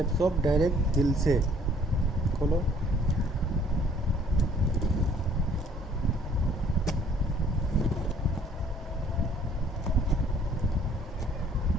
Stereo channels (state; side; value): normal; both; correlation 0.59